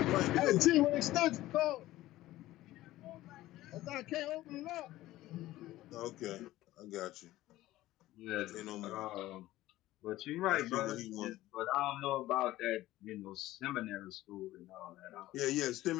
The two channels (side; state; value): right; quieter; 16.0 dB